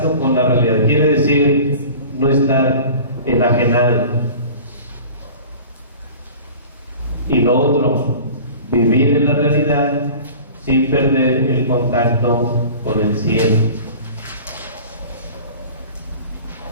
con la realidad. Quiere decir no estar enajenado. Y lo otro, vivir en la realidad sin perder el contacto con el cielo.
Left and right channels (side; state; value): both; inverted; correlation -0.41